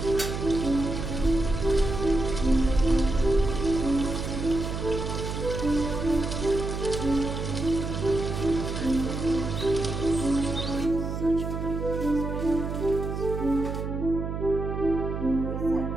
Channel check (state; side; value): noise; right; hum, 4 dB below the sound